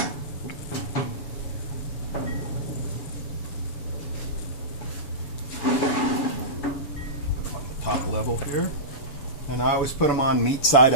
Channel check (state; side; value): late; right; 7.1 ms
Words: Put them on the top level here. And I always put them on meat side